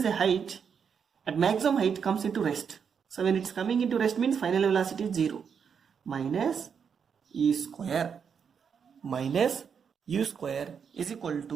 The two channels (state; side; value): quieter; left; 6.8 dB